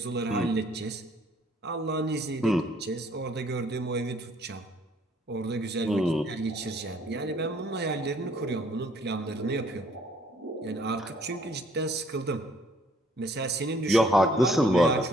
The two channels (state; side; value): normal; both; correlation 0.63